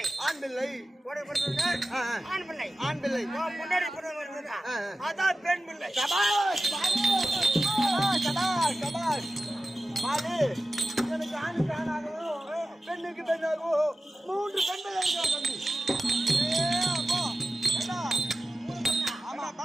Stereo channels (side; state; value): both; normal; correlation 0.94